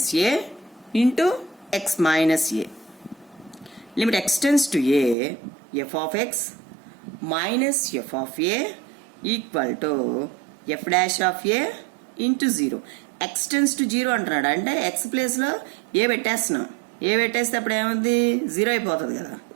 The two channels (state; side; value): drops out; left; at 5.2 s